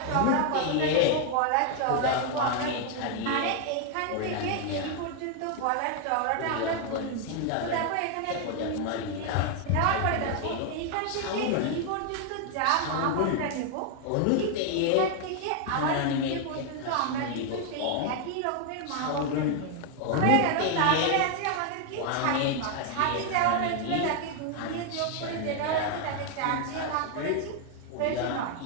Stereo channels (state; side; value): different; both; correlation 0.00